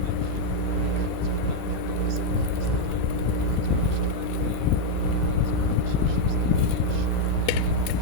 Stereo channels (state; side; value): different; both; correlation 0.01